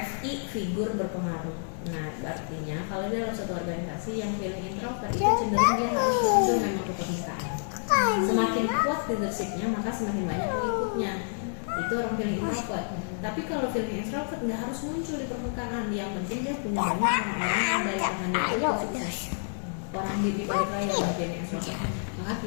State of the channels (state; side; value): silent; right; digital silence